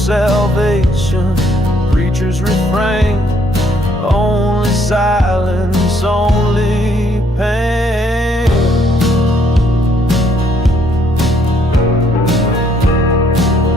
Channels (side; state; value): both; normal; correlation 0.68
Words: preachers refrain, only silence, only pain.